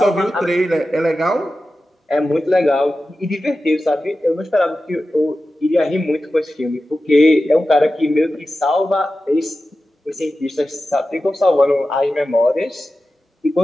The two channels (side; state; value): both; normal; correlation 0.93